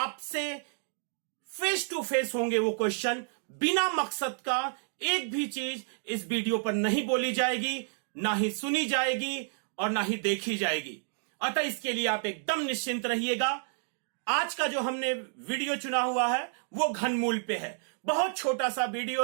फेस टू फेस होंगे। वो क्वेश्चन बिना मकसद का एक भी चीज इस वीडियो पर नहीं बोली जाएगी, ना ही सुनी जाएगी और ना ही देखी जाएगी। अतः इसके लिए आप एकदम निश्चिंत रहिएगा। आज का जो हमने वीडियो चुना हुआ है वो घनमूल पे है। बहुत छोटा सा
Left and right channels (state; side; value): silent; left; digital silence